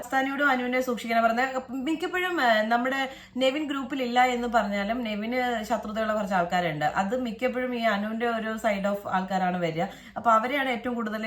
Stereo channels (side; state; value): both; identical; correlation 1.00